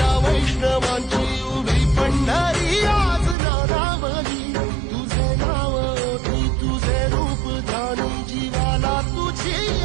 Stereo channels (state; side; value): drops out; left; at 3.4 s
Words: वैष्णवांची उभी पंढरी आज नारावली तुझे नाव ओठी तुझे रूप ध्यानी जीवाला तुझी